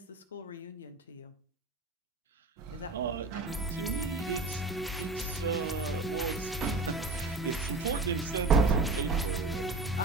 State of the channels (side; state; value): left; quieter; 3.1 dB